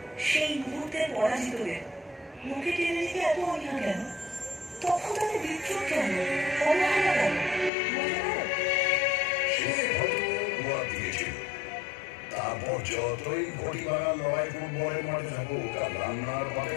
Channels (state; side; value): drops out; right; at 7.7 s